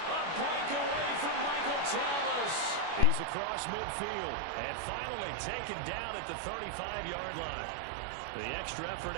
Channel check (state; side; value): late; left; 25 ms